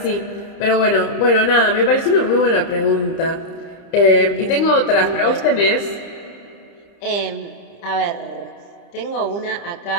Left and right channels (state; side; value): late; right; 30 ms